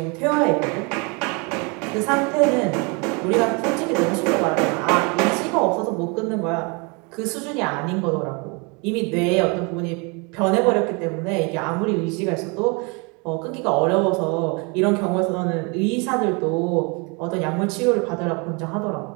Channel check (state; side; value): quieter; left; 31.1 dB